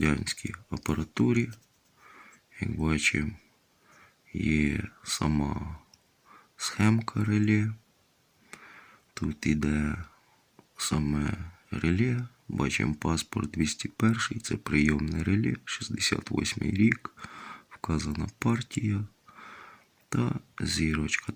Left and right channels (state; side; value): identical; both; correlation 1.00